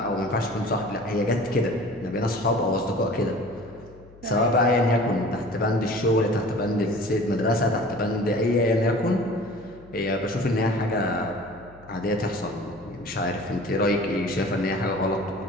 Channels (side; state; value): left; noise; hum, 23 dB below the sound